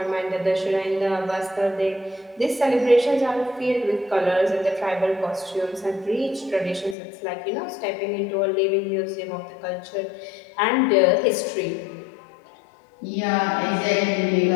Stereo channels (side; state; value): right; drops out; at 7.0 s